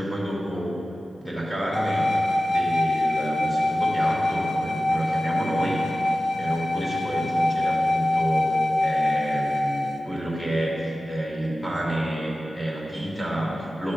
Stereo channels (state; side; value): normal; both; correlation 0.95